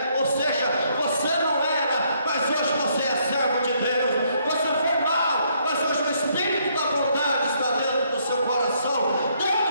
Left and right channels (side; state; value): both; inverted; correlation -0.70